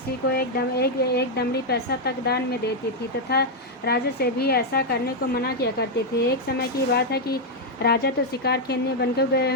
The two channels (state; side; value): normal; both; correlation 0.00